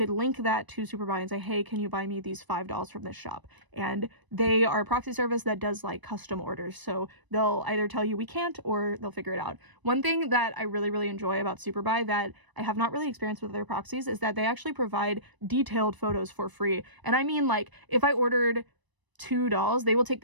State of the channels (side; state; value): left; late; 1.0 ms